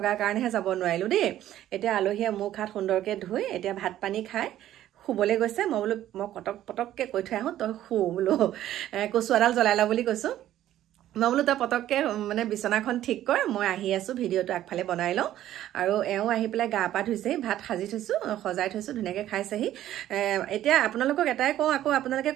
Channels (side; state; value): left; quieter; 12.7 dB